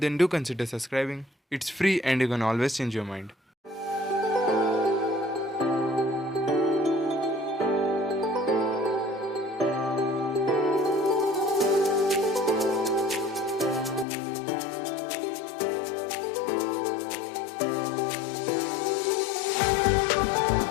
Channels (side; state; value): right; drops out; at 14.1 s